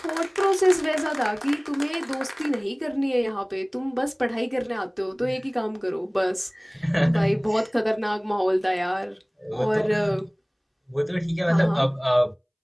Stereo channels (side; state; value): both; identical; correlation 1.00